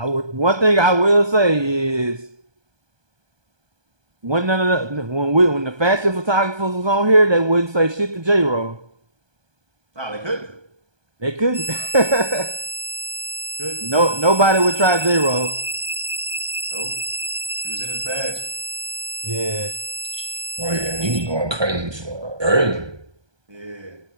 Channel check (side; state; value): left; late; 1.2 ms